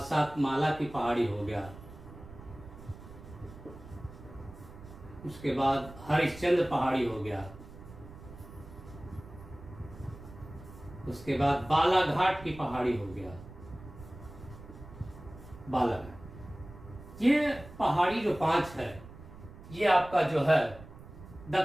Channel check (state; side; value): noise; right; rumble, 16 dB below the sound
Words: की पहाड़ी हो गया, उसके बाद हरिश्चंद्र पहाड़ी हो गया, उसके बाद बालाघाट की पहाड़ी हो गया, बालाघाट। ये पहाड़ी जो 5 है, ये आपका जो है